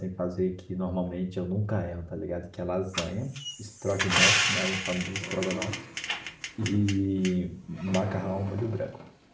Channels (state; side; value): identical; both; correlation 1.00